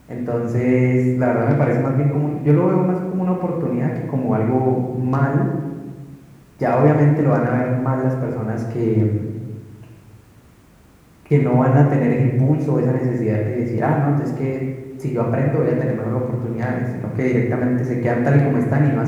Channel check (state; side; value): identical; both; correlation 1.00